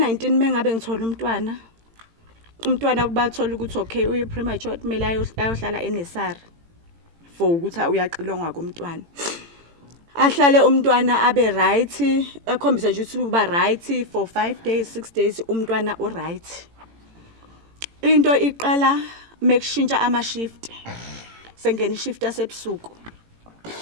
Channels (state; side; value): late; left; 18 ms